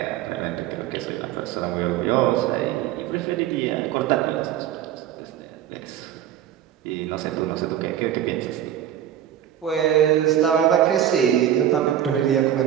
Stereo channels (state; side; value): quieter; left; 10.9 dB